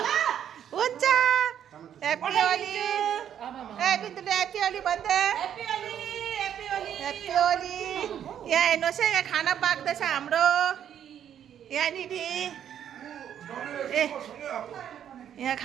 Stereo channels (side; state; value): left; quieter; 9.6 dB